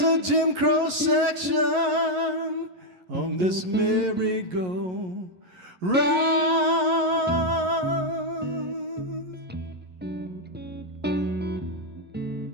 a Jim Crow section on this merry-go-round?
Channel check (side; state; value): left; late; 11 ms